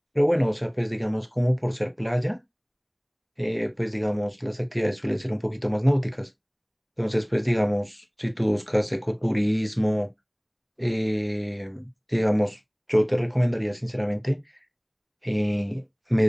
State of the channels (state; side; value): identical; both; correlation 1.00